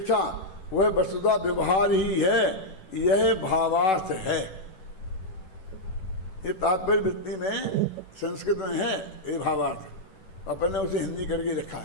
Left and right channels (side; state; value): right; late; 11 ms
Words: वह वस्तुतः व्यवहार ही है, यह भावार्थ है। ये तात्पर्य वृत्ति में संस्कृत में है ये भावार्थ, अपन ने उसे हिंदी करके लिखा